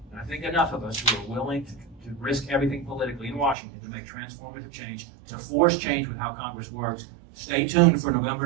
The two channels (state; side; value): drops out; left; at 3.6 s